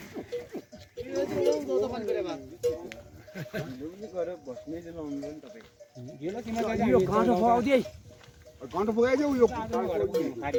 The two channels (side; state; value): both; identical; correlation 1.00